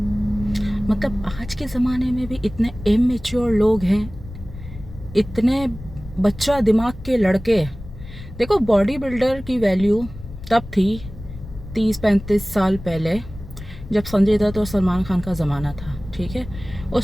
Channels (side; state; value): left; noise; rumble, 14 dB below the sound